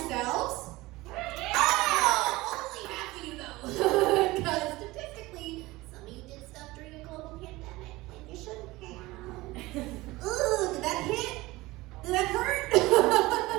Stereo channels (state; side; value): quieter; left; 20.1 dB